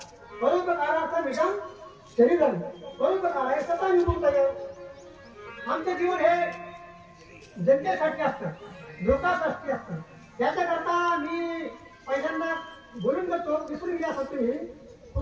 परोपकाराचं निगम शरीरम, परोपकाराय सतानुभूतय. आमचं जीवन हे जनतेसाठी असतं, लोकांसाठी असतं. त्याच्याकरता मी पहिल्यांदा बोलून जातो, विसरून गेल्यासाठी तुम्ही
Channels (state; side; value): identical; both; correlation 1.00